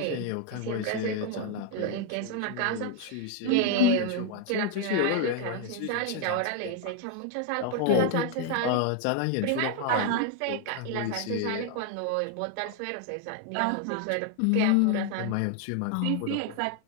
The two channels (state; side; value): different; both; correlation 0.01